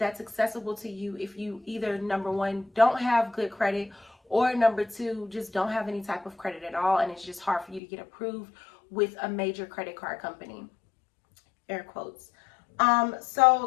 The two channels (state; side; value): drops out; right; at 7.8 s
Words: accessible to you if you either, number one, don't have good credit, or number two, just don't have any type of credit at all and it's just hard for you to get approved with a major credit card company, air quotes.